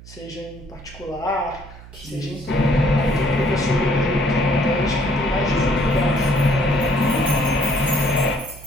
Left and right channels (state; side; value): noise; right; hum, 18 dB below the sound